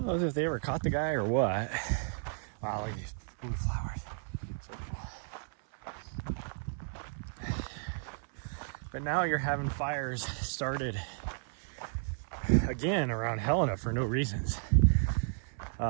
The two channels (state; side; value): silent; left; 56 dB below the other